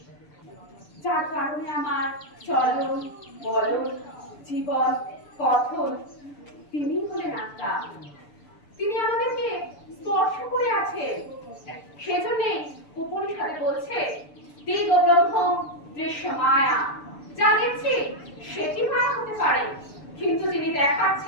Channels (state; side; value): late; right; 6.9 ms